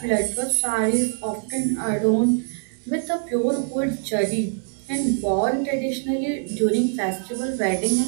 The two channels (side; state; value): left; silent; digital silence